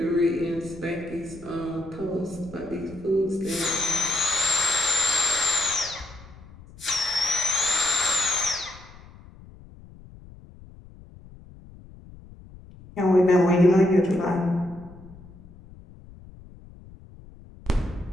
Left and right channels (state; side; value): noise; left; rumble, 20 dB below the sound